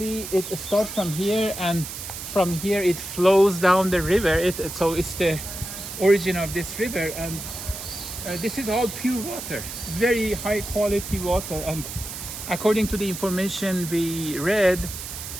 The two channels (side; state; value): right; noise; hiss, 9 dB below the sound